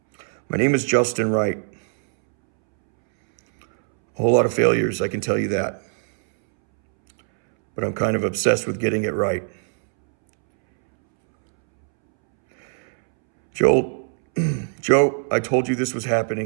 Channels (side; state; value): left; silent; 65 dB below the other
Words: My name is Justin Wright. A whole lot of failures, I can tell you that. But I'm kind of obsessed with getting it right. Joe, I told you this was